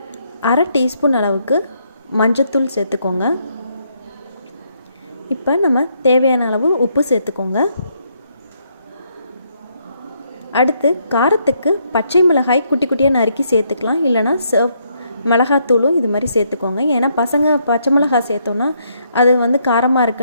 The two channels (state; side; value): inverted; both; correlation -0.73